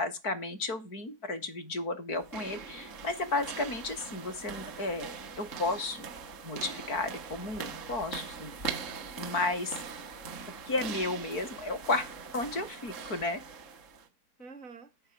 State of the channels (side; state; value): right; late; 4.5 ms